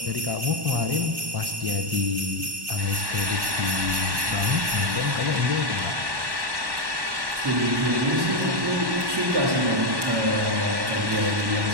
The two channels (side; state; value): left; late; 1.1 ms